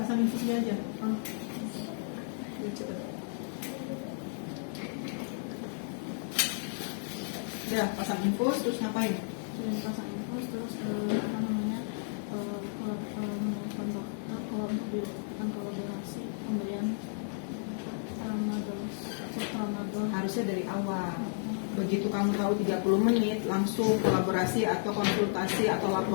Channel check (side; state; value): right; silent; digital silence